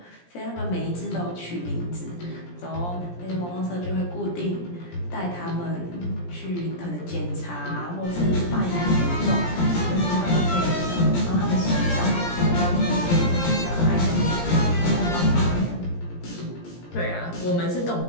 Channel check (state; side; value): late; right; 17 ms